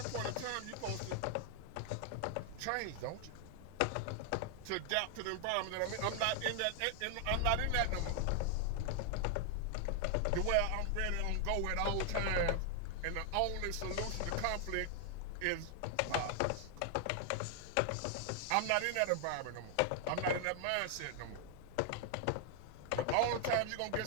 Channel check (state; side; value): different; both; correlation 0.00